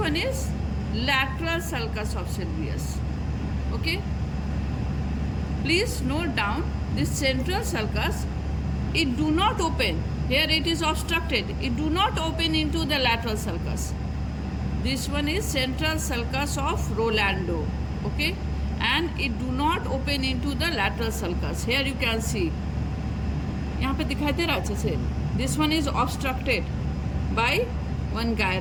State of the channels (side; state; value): both; identical; correlation 1.00